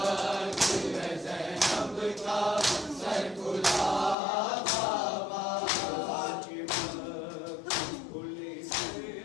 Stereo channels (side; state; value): right; drops out; at 4.2 s